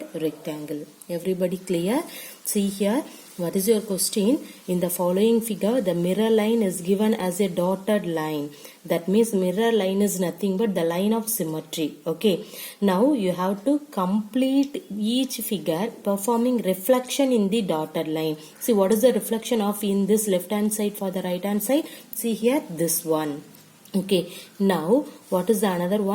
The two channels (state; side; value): identical; both; correlation 1.00